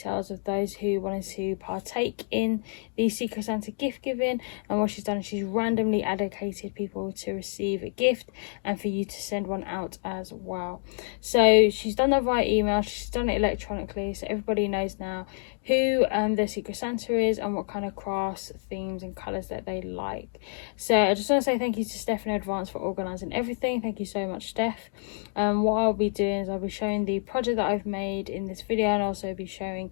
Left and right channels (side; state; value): right; silent; 59 dB below the other